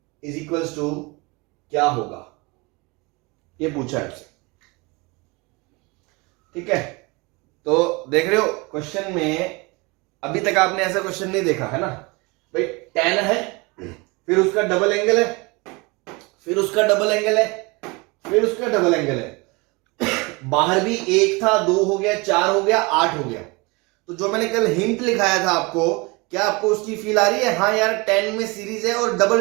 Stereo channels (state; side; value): quieter; left; 26.4 dB